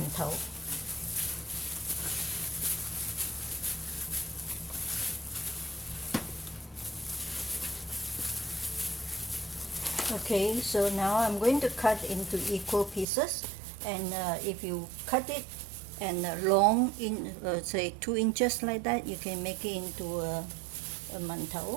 Okay, so now I'm going to cut into equal pieces, and if you cut it and long, in say 2 inches like that, you can make it into a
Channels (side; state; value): left; drops out; at 13.1 s